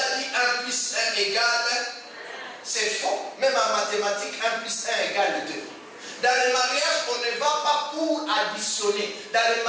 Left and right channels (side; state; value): both; identical; correlation 1.00